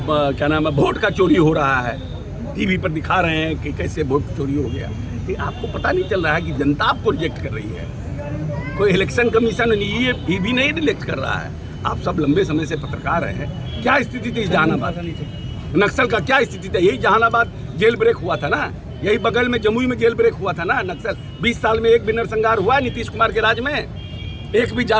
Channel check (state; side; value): identical; both; correlation 1.00